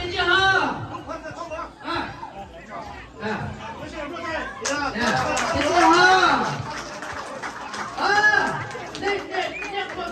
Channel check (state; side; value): identical; both; correlation 1.00